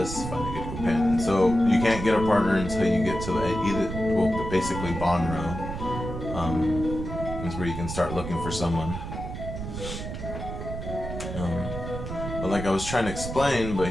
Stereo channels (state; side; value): noise; right; rumble, 7 dB below the sound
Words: find a good companion. So you can't get a partner until you get to basically Bonro. Is where you can start looking for someone. But like I was trying to explain, but